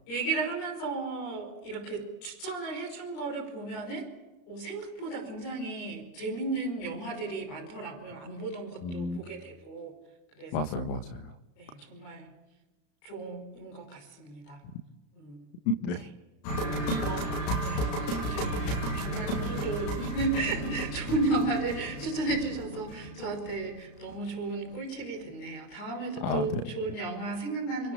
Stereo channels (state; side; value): late; right; 34 ms